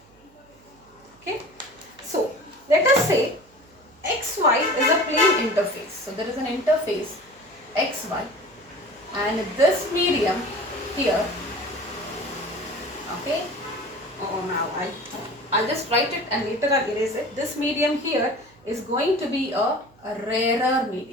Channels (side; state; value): right; noise; hum, 29 dB below the sound